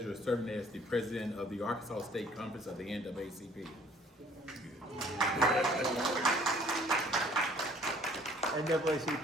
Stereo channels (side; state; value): both; normal; correlation 0.57